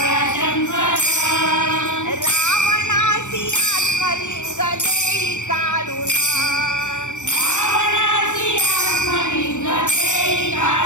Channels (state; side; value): late; right; 0.85 ms